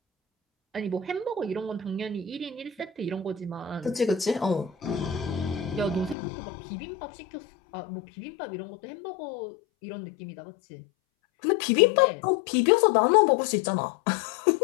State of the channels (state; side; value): drops out; right; at 6.2 s